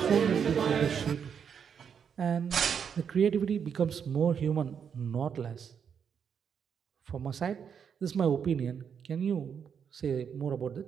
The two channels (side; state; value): left; quieter; 7.3 dB